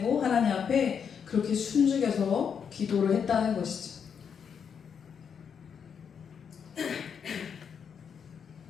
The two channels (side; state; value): right; quieter; 7.1 dB